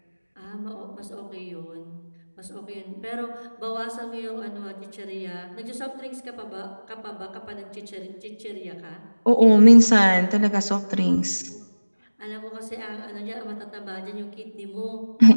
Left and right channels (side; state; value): both; inverted; correlation -1.00